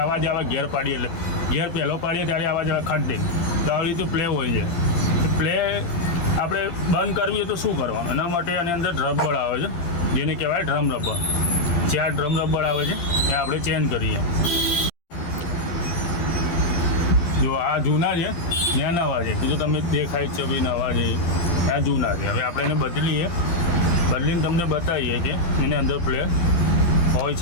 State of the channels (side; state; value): right; late; 12 ms